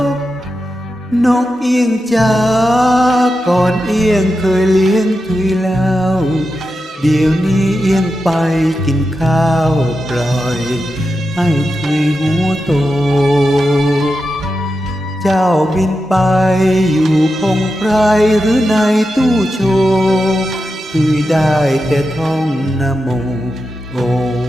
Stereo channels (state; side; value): normal; both; correlation 0.89